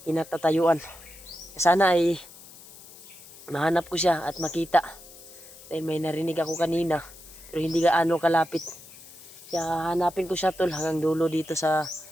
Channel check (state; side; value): noise; left; hiss, 19 dB below the sound